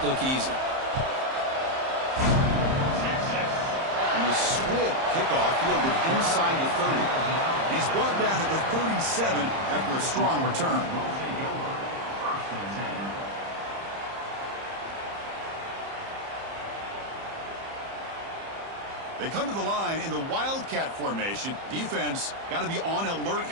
look easy. And the swift kickoff fielded inside the 30. He's brought down at the 37 after a strong return. They come to the line in the Wildcat formation. Defense got to be on alert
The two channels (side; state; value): left; late; 30 ms